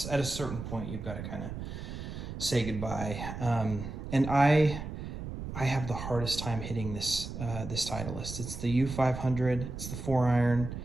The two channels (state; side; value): noise; right; rumble, 7 dB below the sound